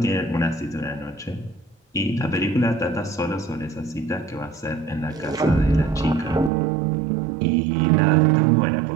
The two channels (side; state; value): left; drops out; at 6.5 s